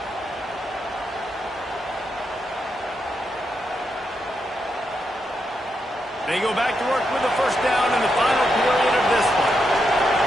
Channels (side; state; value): both; normal; correlation 0.83